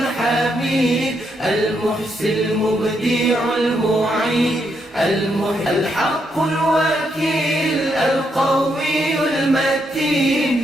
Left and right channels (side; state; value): both; normal; correlation 0.78